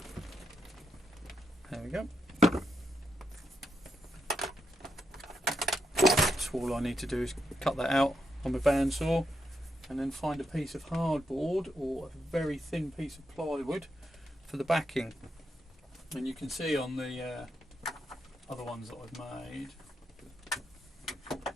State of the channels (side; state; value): both; normal; correlation 0.82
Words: we go. So all I need to do is cut that out on my bandsaw and then find a piece of hardboard or a very thin piece of plywood for the backing. And you can see on the other ones that I've made,